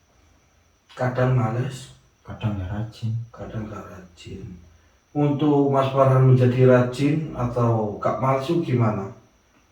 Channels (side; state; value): both; identical; correlation 1.00